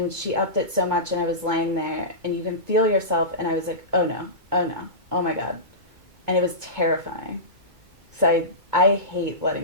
she upped it so much, and I was laying there, and you can feel yourself, and I was like, oh no, oh my God. And it was terrifying. So I hate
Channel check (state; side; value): late; left; 2.2 ms